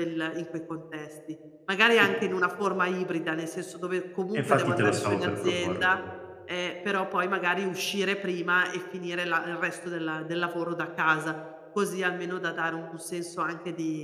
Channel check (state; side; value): identical; both; correlation 1.00